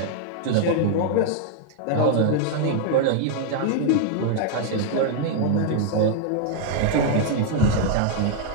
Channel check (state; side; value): different; both; correlation 0.00